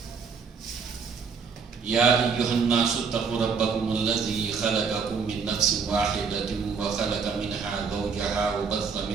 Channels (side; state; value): left; quieter; 5.6 dB